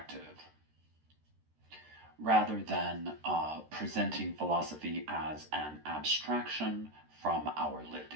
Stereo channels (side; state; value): left; late; 13 ms